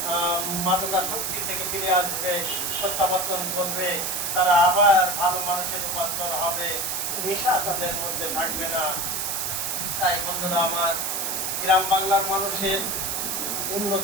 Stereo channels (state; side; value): noise; right; hiss, 1 dB below the sound